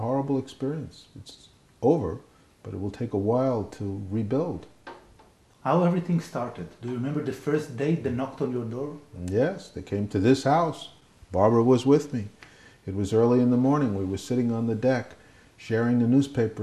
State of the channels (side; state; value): both; identical; correlation 1.00